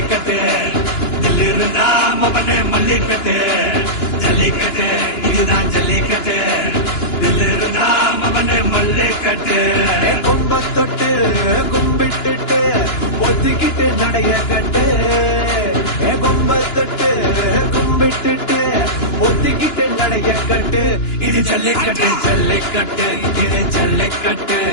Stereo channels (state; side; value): late; right; 2.9 ms